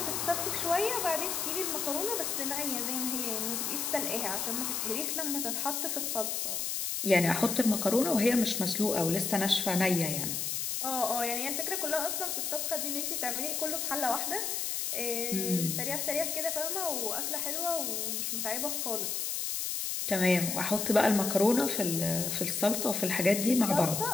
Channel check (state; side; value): noise; left; hiss, 1 dB below the sound